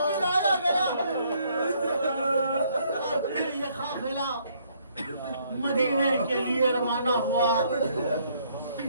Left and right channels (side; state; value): both; inverted; correlation -0.67